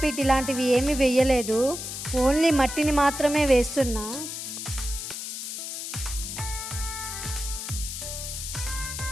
ఇలాంటివి ఏమీ వేయలేదు, ఓన్లీ మట్టిని మాత్రమే వేస్తున్నా.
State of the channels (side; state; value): left; noise; hiss, 6 dB below the sound